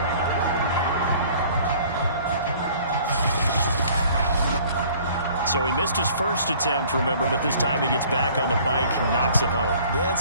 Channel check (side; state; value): both; inverted; correlation -0.53